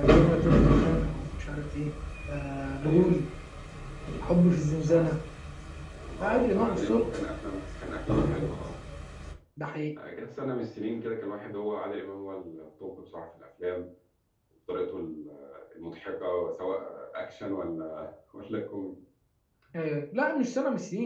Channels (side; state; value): both; identical; correlation 1.00